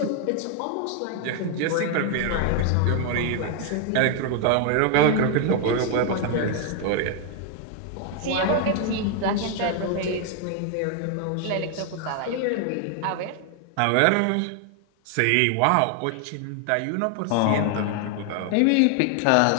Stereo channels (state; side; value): different; both; correlation 0.00